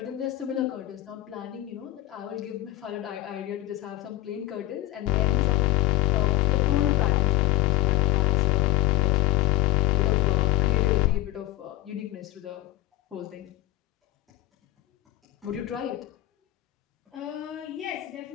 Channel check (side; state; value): right; quieter; 15.8 dB